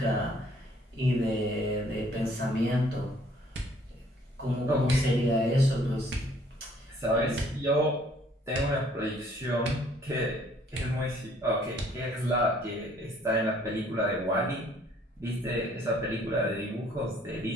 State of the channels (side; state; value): both; normal; correlation 0.61